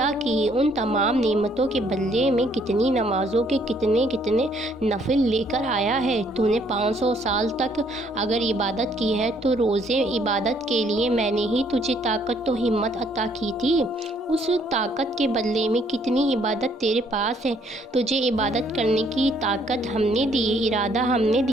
کی۔ ان تمام نعمتوں کے بدلے میں کتنی نمازوں کے کتنے نفل لے کر آیا ہے۔ تو نے 500 سال تک اگر عبادت کی ہے تو روزے عبادت کے لیے میں نے ہی تجھے طاقت و ہمت عطا کی تھی۔ اس طاقت کے بدلے میں کتنی عبادت تیرے پاس ہے۔ تجھے عبادت کرنے کی طاقت ہم نے دی، ارادہ ہم نے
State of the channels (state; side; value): normal; both; correlation 0.66